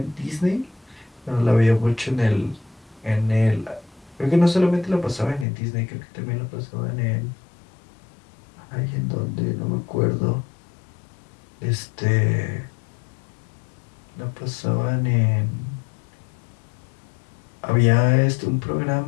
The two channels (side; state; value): right; drops out; at 5.5 s